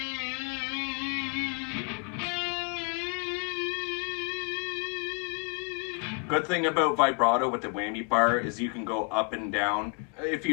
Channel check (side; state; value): right; quieter; 34.8 dB